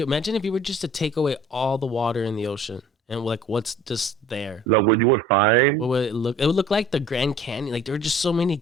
imagine if you were just to take away all the water in the ocean and like what's just there. Like what you would find. What would it look? It would look like the Grand Canyon. Like there were just so many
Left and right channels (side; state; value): both; normal; correlation 0.50